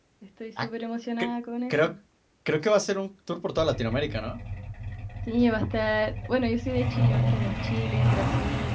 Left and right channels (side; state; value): both; identical; correlation 1.00